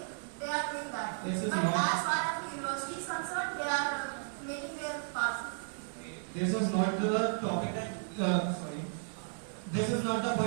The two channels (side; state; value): left; silent; digital silence